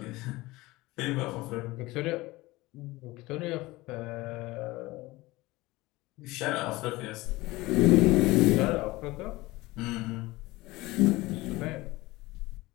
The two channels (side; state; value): right; quieter; 20.2 dB